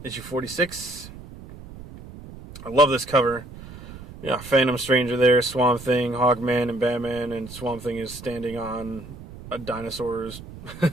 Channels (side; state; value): right; noise; rumble, 15 dB below the sound